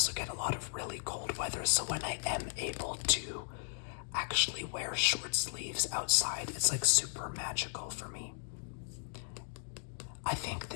get a lot of really cold weather. So when I am able to actually wear short sleeves outside, it's like super magical for me. I think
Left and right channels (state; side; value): silent; right; digital silence